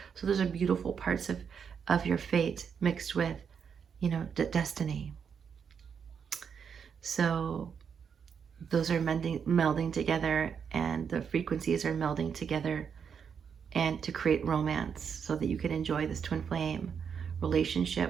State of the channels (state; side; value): quieter; left; 7.0 dB